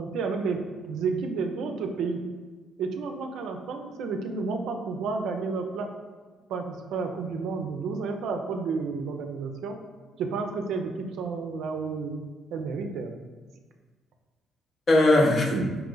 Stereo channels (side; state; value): both; normal; correlation 0.73